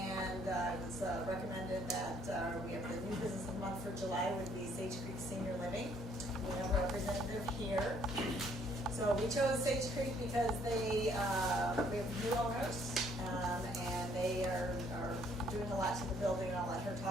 it was recommended that we have the new business of the month for July would be Sage Creek Senior Living. We have a representative here. So we chose Sage Creek because we have new owners, and they are doing a lot to the building, and I'll let her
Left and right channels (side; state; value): both; normal; correlation 0.64